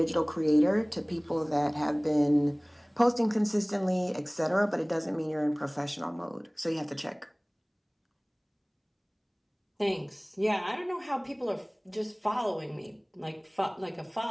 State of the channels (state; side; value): identical; both; correlation 1.00